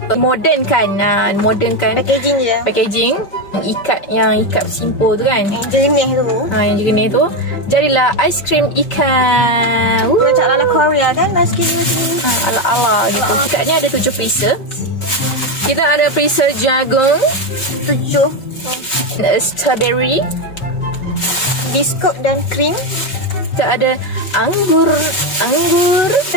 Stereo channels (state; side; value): late; right; 5.3 ms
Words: modernkan. Modernkan packaging je. Packaging yang ikat simple tu kan. Yang jernih tu. Yang jernih tu. Jadilah aiskrim ikan. Macam ala Korea kan aiskrim macam ni. Ala-ala gitu. Ikatnya ada 7 freezer. Kita ada freezer jagung 7, strawberry, biskut dan krim. kita ada anggur,